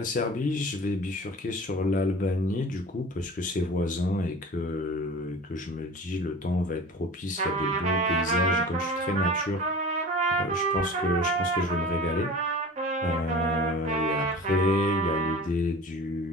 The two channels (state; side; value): normal; both; correlation 0.38